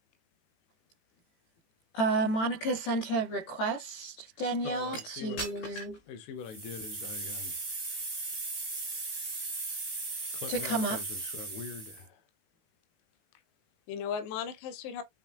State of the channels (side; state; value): right; late; 18 ms